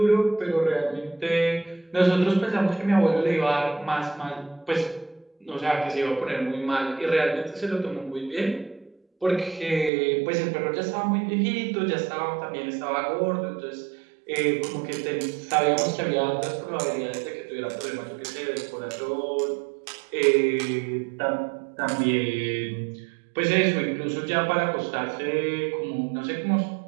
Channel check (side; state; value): left; drops out; at 9.9 s